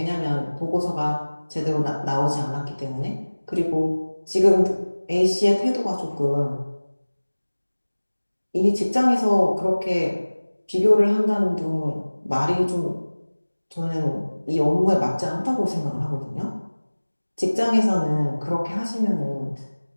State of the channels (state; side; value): inverted; both; correlation -1.00